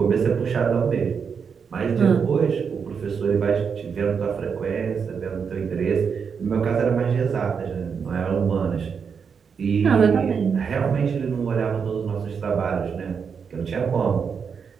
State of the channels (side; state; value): left; quieter; 6.3 dB